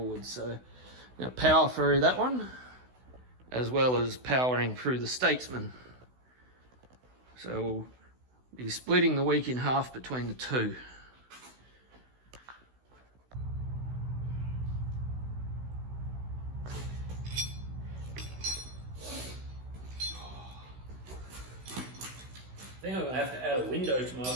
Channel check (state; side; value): late; left; 16 ms